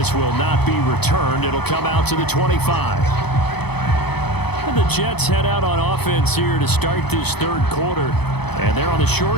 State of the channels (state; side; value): late; right; 0.98 ms